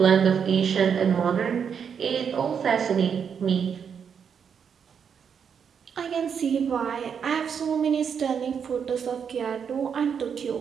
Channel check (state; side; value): quieter; left; 7.1 dB